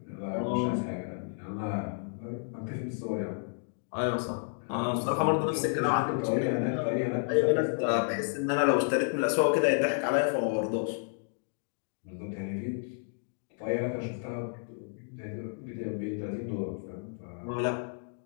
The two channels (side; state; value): right; silent; digital silence